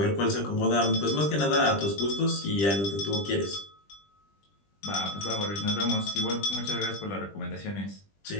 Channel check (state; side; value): late; right; 20 ms